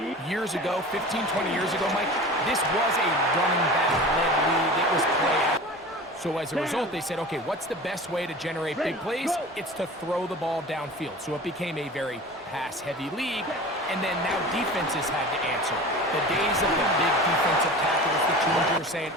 Years ago, 15, 20 years ago, Mike, this was a running back-led league. It was play. So as a result, they said, okay, what's the best way to generate big plays? It's to throw the ball downfield. So it became a very pass-heavy league, and then now defenses had to answer. The days of the big defensive tackles, the teams were saying,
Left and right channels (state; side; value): normal; both; correlation 0.36